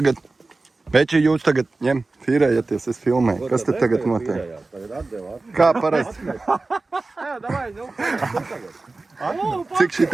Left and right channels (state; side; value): quieter; left; 3.5 dB